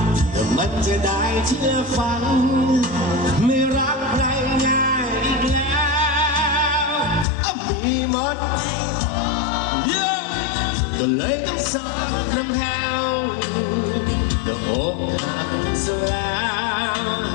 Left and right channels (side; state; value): right; drops out; at 7.2 s